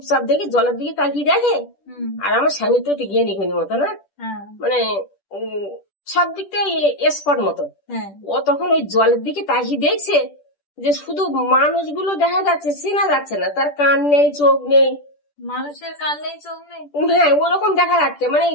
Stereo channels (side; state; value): right; late; 10 ms